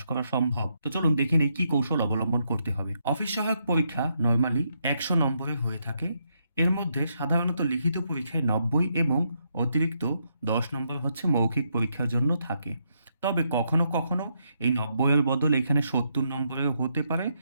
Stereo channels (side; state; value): both; inverted; correlation -0.77